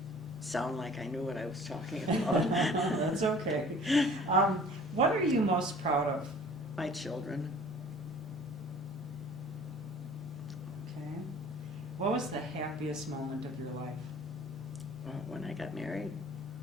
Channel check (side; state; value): both; normal; correlation 0.49